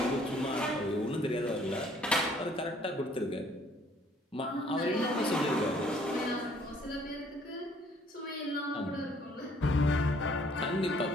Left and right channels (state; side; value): normal; both; correlation 0.61